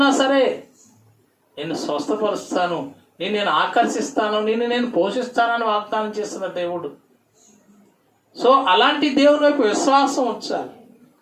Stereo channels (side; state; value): both; identical; correlation 1.00